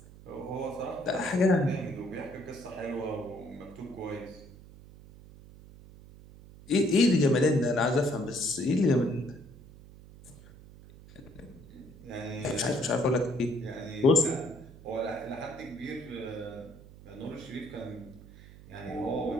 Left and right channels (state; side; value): noise; right; hum, 19 dB below the sound